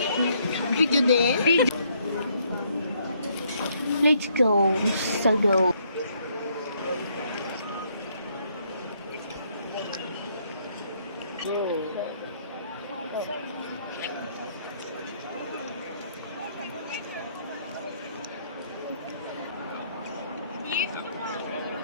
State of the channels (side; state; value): both; inverted; correlation -0.69